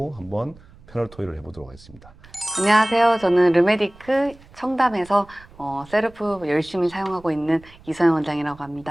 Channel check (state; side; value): noise; right; rumble, 23 dB below the sound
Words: 한번 패널 토의를 해보도록 하겠습니다. 안녕하세요. 저는 르메디크 청담에서 셀프 열심히 사용하고 있는 이서영 원장이라고